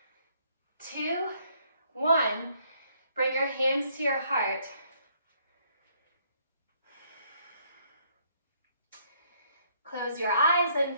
2, 1. Bring your hands to your heart. Close your eyes and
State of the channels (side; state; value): both; inverted; correlation -0.67